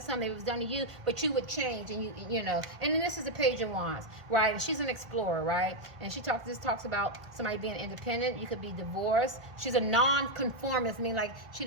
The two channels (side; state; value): left; late; 1.6 ms